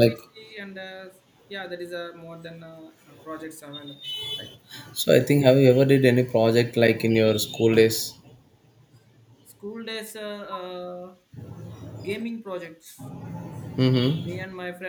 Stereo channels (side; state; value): both; identical; correlation 1.00